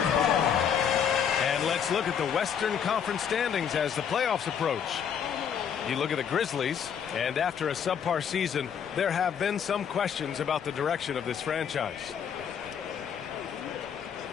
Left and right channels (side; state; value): right; quieter; 7.9 dB